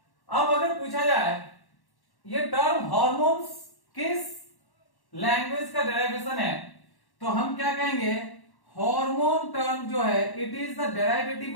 अब अगर पूछा जाए ये टर्म हॉर्मोन्स किस लैंग्वेज का डेरिवेशन है, तो हम क्या कहेंगे? हार्मोन टर्म जो है it is the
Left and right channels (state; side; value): late; right; 1.1 ms